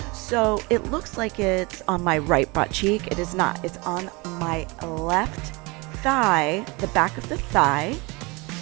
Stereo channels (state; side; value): quieter; left; 26.2 dB